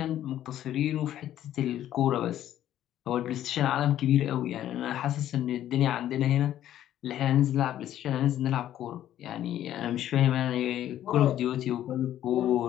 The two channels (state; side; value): quieter; right; 12.0 dB